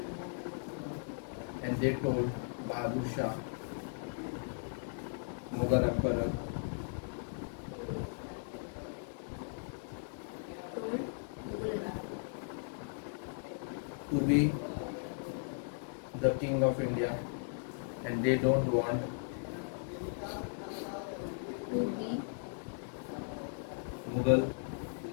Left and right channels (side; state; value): right; silent; 53 dB below the other